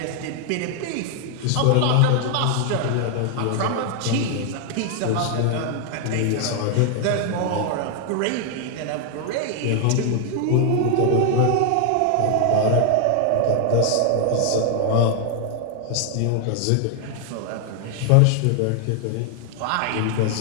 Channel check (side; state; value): both; different; correlation 0.00